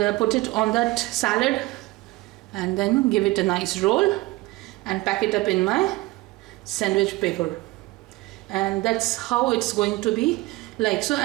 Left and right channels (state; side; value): quieter; left; 20.5 dB